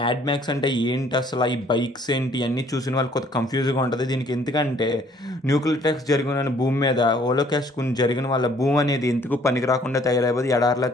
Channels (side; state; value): both; normal; correlation 0.60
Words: మ్యాక్స్ అంటే ఏంటి అసలు, ఈ బైక్స్ ఏంటి అన్ని చూసిన వాళ్ళు కొత్త కన్ఫ్యూజ్గా ఉంటుంది. దీనికి ఎందుకంటే న్యూక్లియర్ అటాక్స్ జరిగిన భూమి మీద హోలోకాస్ట్ జరిగిన వాళ్ళ భూమి అనేది ఎందుకు పనికి రాకుండా తయారైపోద్ది, ఎడారిలా